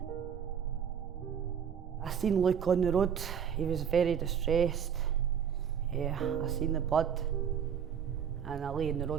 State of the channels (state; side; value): quieter; left; 7.9 dB